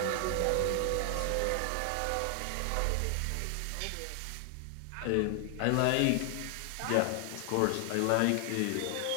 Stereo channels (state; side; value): different; both; correlation 0.00